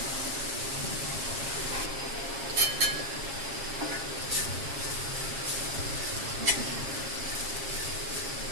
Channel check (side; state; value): left; late; 7.4 ms